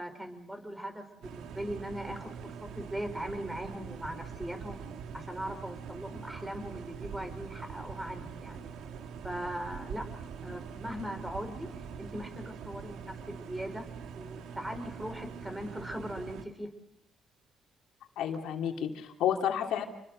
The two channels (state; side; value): normal; both; correlation 0.71